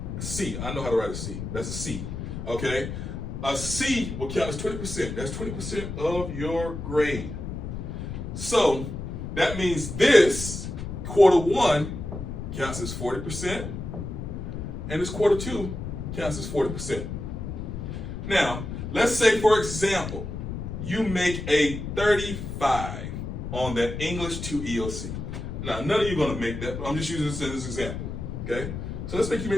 C, I know how to write a C. That's a C, okay? A C will count as 20%. That's 20% of your grade. So that means this quarter 1 counts as 40%, and this quarter 2 counts as 40%. Now, let's say, for example, you make a 35 on that English 2 EOC. Now, none of you are going to make that, but I'm just using this as an example, okay? So let's say you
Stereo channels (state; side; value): noise; left; rumble, 6 dB below the sound